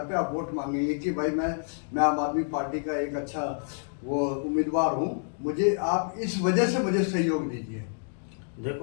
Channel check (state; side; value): silent; right; digital silence